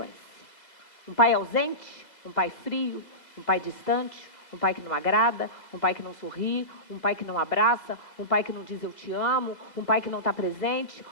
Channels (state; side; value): late; right; 2.0 ms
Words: Um pai ausente, um pai frio, um pai distante, um pai que não agrada, um pai que não sorri, um pai que não abraça, um pai que não diz eu te amo, um pai que não está presente,